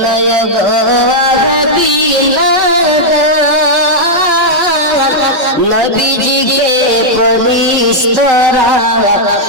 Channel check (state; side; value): late; left; 5.2 ms